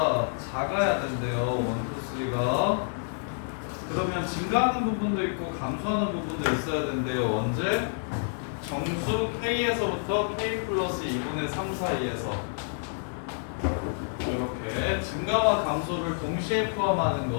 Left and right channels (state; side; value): silent; right; digital silence